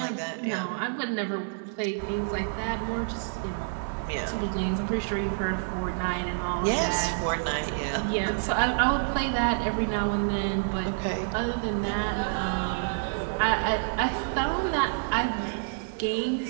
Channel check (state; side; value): silent; left; digital silence